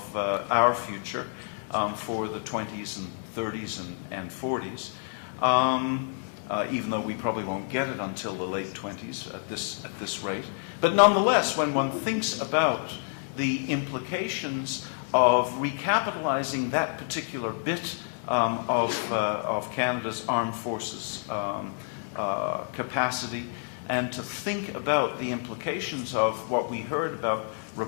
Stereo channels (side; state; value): right; silent; 59 dB below the other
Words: our future for the 20s and 30s and 40s, even though we probably won't get it until the late 20s at this rate. But nonetheless, when one thinks about the implications of recapitalizing that particular bit of Canada's armed forces capacity, and to think about the implications of what we heard about